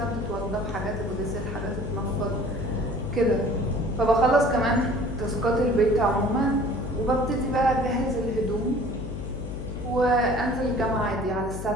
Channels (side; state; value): left; noise; hum, 7 dB below the sound